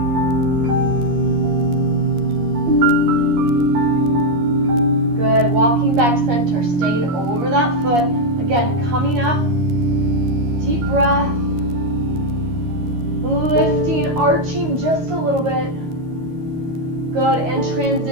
Good. Walking back center, staying over that foot. Again, coming up. Deep breath. Lifting, arching just a little bit. Good. And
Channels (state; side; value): late; left; 13 ms